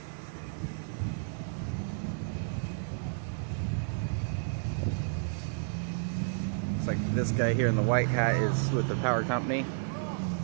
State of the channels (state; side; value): silent; left; digital silence